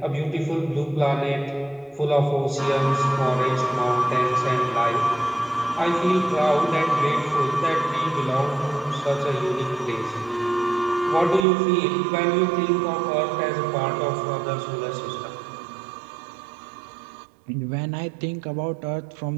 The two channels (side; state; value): left; drops out; at 11.5 s